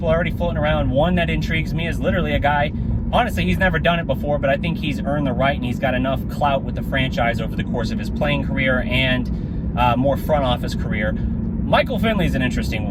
are already floating around. One that intrigues me is literally a guy honestly, he's never done it before, but I think he's earned the right, and he's got enough clout with the franchise over the course of his playing career and more front office career. Michael Finley is an interesting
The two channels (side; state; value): both; identical; correlation 1.00